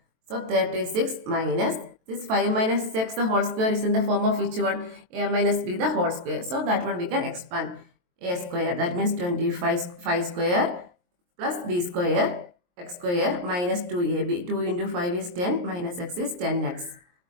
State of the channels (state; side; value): late; left; 23 ms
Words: So 36 minus this 5 minus X the whole square is in the form of which one? A minus B the whole square. So that one we can expand. A square, that means 25 5 square plus B square X square minus 2AB. 2 into 5 is 10 minus X is 10X.